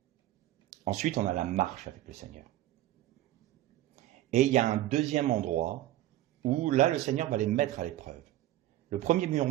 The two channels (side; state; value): left; quieter; 14.7 dB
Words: Ensuite, on a la marche avec le Seigneur. Et il y a un deuxième endroit où là, le Seigneur va les mettre à l'épreuve. Le premier